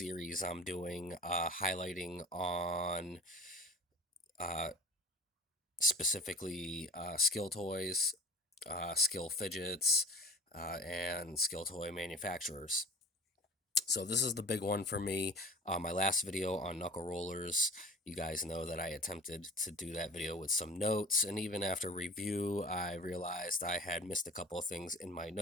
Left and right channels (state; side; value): normal; both; correlation 0.40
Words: I'm doing, highlighting on uh, specifically skill toys, skill fidgets, and skill toy manufacturers. So this is the big one for me. My last video on knuckle rollers, you guys know that I attempted to do that video with some notes, and even after review, I realized I had missed a couple of things in my